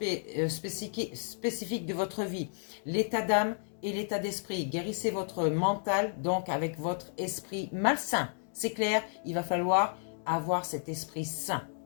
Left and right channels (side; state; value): right; silent; digital silence